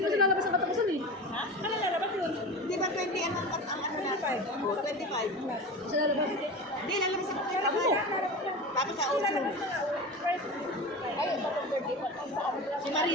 ko siya lalabas ng katapusan eh. Ha? Ano lalabas yun? Di ba 20 ang ano na? 25. Siya lalabas. Hindi, lalabas ako kayo. Tapos sa auto. Si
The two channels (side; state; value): both; normal; correlation 0.30